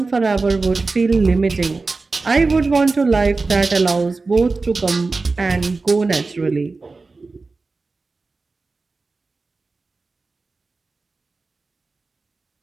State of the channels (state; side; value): quieter; left; 3.8 dB